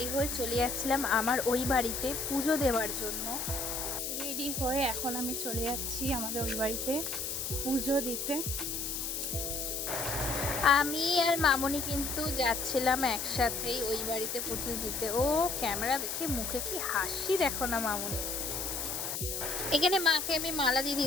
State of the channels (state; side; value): noise; left; hiss, 3 dB below the sound